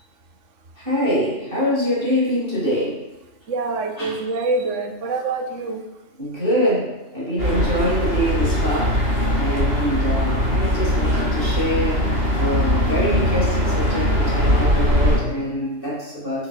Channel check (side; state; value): left; late; 2.9 ms